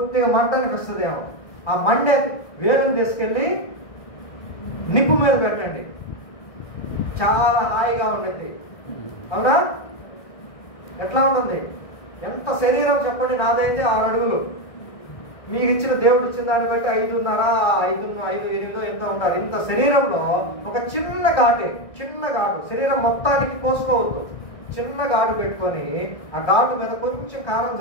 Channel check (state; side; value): late; right; 1.6 ms